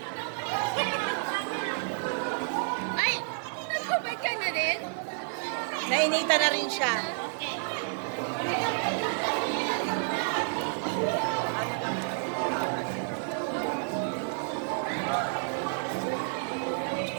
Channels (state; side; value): silent; left; 58 dB below the other